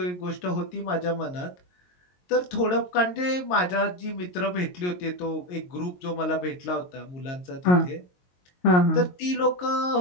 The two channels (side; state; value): right; late; 22 ms